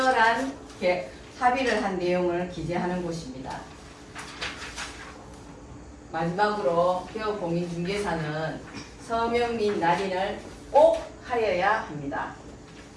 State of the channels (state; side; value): identical; both; correlation 1.00